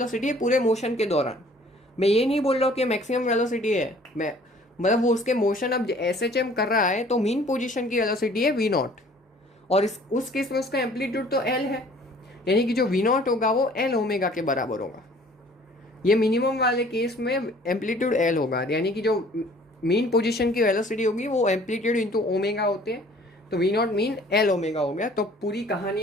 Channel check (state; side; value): normal; both; correlation 0.54